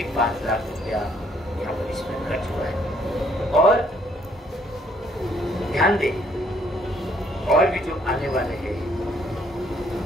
5 लाख रुपया यहाँ पर इसमें खर्च हुआ है। और ध्यान दें, और भी जो आने वाले हैं,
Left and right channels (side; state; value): both; normal; correlation 0.66